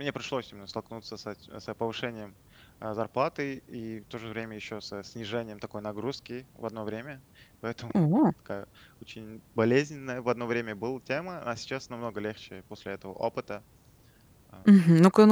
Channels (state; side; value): identical; both; correlation 1.00